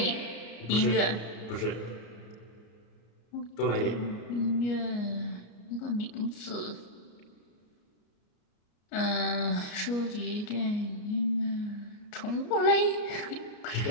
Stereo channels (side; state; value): right; late; 33 ms